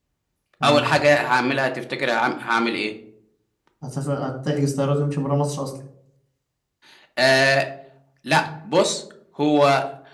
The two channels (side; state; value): both; identical; correlation 1.00